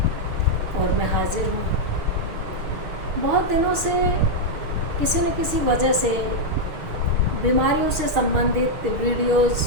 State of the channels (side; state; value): left; late; 6.4 ms